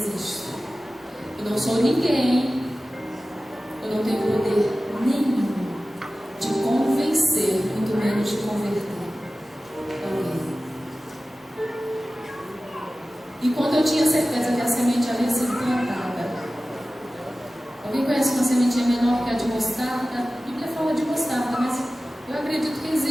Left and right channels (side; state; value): both; normal; correlation 0.96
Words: Eu não sou ninguém, eu não tenho poder nenhum de convencer, muito menos de converter alguém. E quando eu tinha certeza que a semente havia sido plantada, alguém conhece uma sementinha menor que a de mostarda? A Bíblia fala de mostarda, mas eu acredito que